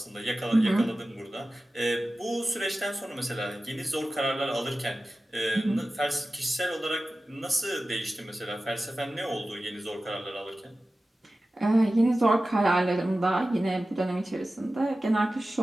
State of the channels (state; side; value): normal; both; correlation 0.95